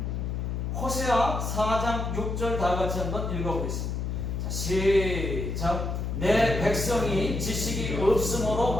호세아 4장 6절 다 같이 한번 읽어보겠습니다. 자, 시작. 내 백성이 지식이 없으므로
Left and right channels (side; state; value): left; noise; hum, 2 dB below the sound